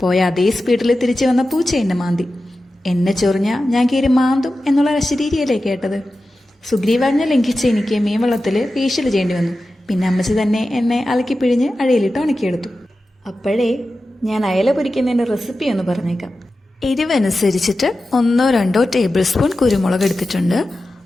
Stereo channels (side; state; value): both; normal; correlation 0.93